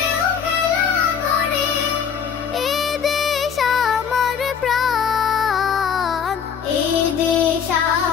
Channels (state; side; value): quieter; right; 7.2 dB